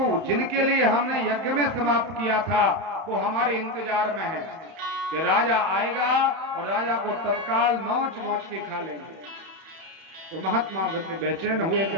जिनके लिए हमने यज्ञ में समाप्त किया था वो हमारे इंतजार में है कि राजा आएगा और राजा को तत्काल नोच नोच के खा लेंगे। तो महात्मा बेचैन हुए कि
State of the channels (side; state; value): left; late; 31 ms